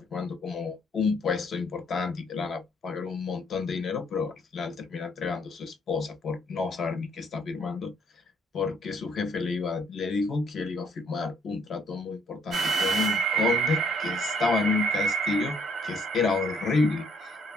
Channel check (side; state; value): both; normal; correlation 0.67